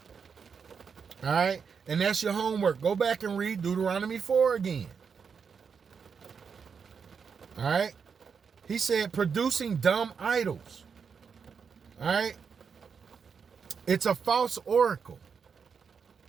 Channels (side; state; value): left; quieter; 6.1 dB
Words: All right, and that's your homework. Go back and read Deuteronomy 4 again. All right, he said producing dumb idols. All right, it's a false oracle.